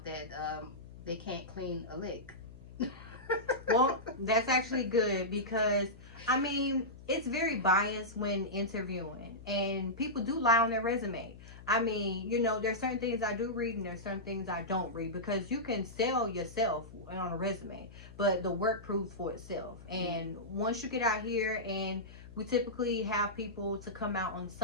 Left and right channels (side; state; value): left; noise; hum, 17 dB below the sound